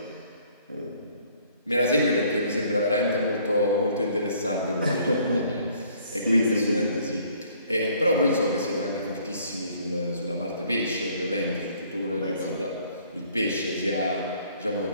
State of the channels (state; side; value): inverted; both; correlation -0.60